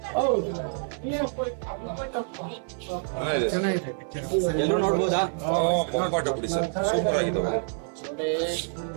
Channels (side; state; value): left; silent; 60 dB below the other